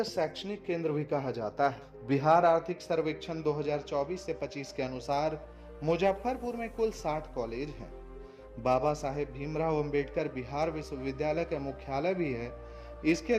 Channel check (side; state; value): both; identical; correlation 1.00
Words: शैक्षणिक केंद्र भी कहा जाता है। बिहार आर्थिक सर्वेक्षण 2024 से 25 के अनुसार मुजफ्फरपुर में कुल 60 कॉलेज हैं। बाबा साहेब भीमराव अंबेडकर बिहार विश्वविद्यालय का मुख्यालय भी है। इसके